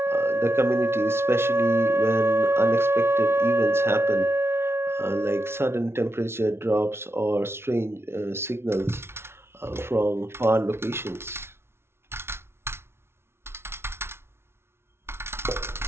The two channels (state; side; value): late; left; 0.12 ms